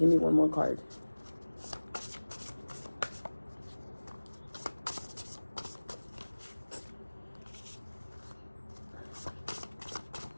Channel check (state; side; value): inverted; both; correlation -1.00